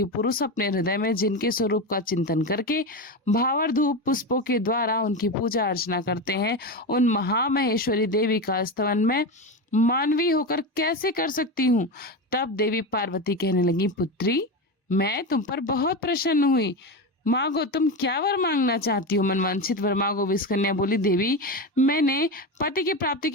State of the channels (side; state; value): both; normal; correlation 0.19